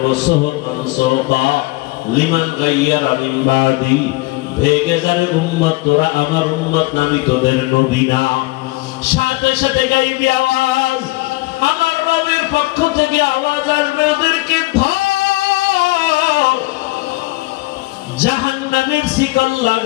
সুহবান সুহবা লিমান গায়্যারা মিন বাদি, ভেগে যারে উম্মত, তোরা আমার উম্মত না, আমি তোদের নবী না। সাথে সাথে গাইবি আওয়াজ, আমার রবের পক্ষ থেকে আওয়াজ আসবে, ওদেরকে ধর, জাহান্নামের শিকল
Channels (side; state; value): right; quieter; 21.6 dB